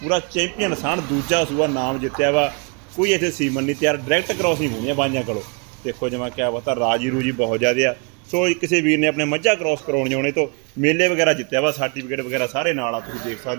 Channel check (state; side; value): quieter; left; 34.1 dB